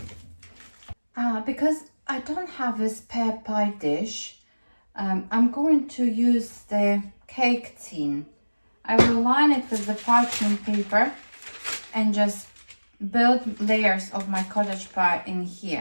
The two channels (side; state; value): both; inverted; correlation -1.00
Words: Because I don't have a spare pie dish, I'm going to use the cake tin. I will line it with the parchment paper and just build layers of my cottage pie in